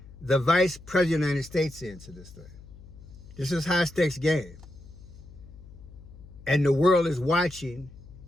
the Vice President of the United States, into this thing. This is high stakes game. And the world is watching,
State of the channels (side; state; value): left; noise; hum, 19 dB below the sound